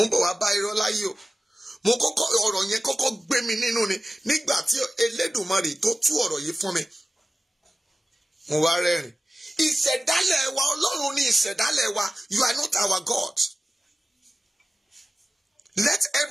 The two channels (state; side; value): normal; both; correlation 0.95